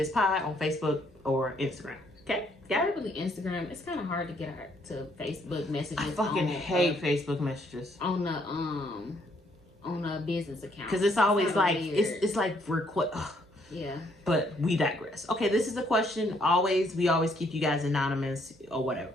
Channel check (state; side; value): normal; both; correlation 0.69